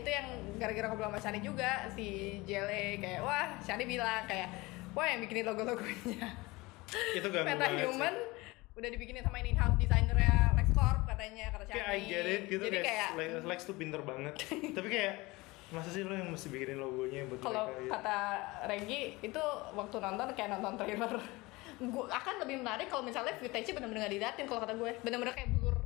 yang gara-gara ngobrol sama Shani juga, si Jele kayak wah Shani bilang kayak wah yang bikinin logo-logonya Itu ganggu Meta banget sih. Human udah dibikinin sama ini in-house designernya LexCorp katanya, kata Shani. Kayak I get it gitu, Jadi kayak Lex tuh pinter banget. Tapi kayak masa sih lo yang mesti bikinin logonya buat kalau mereka gitu? kata Regi itu waktu nonton kayak nonton trailer. Gue akan lebih menarik kalau misalnya footage-nya bener-bener nggak diliatin, kalau kata gue bener-bener kayak blur,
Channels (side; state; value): right; quieter; 22.3 dB